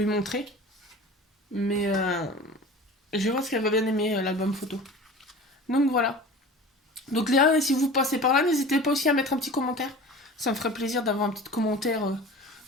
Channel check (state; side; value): normal; both; correlation 0.38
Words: montrer. Mais je pense qu'elle va bien aimer l'album photo. Donc voilà. Donc Léa, si vous passez par là, n'hésitez pas aussi à mettre un petit commentaire. Ça me ferait plaisir d'avoir un petit commentaire